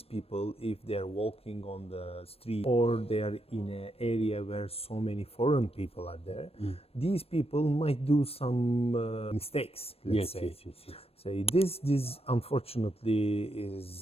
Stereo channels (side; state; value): right; late; 0.28 ms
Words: people, if they are walking on the street or they are in an area where so many foreign people are there, these people might do some mistakes, let's say. Yes. Say this unfortunately